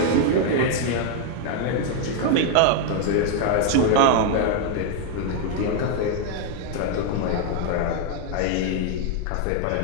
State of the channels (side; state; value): both; different; correlation 0.00